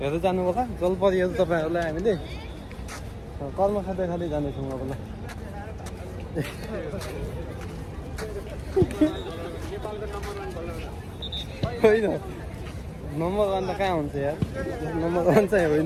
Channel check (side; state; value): both; identical; correlation 1.00